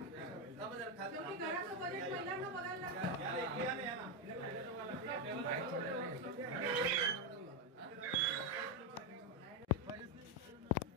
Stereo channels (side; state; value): both; normal; correlation 0.06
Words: थांबा जरा खाली घराचं बजेट महिलांना बघायला लागतं. या रे इकडे या ना या ना